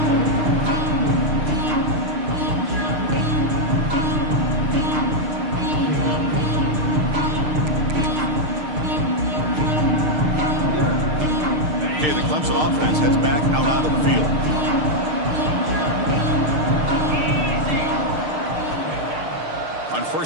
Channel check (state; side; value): late; left; 6.6 ms